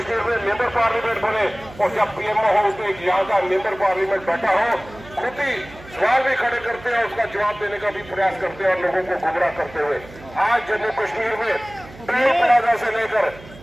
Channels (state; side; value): noise; right; hum, 19 dB below the sound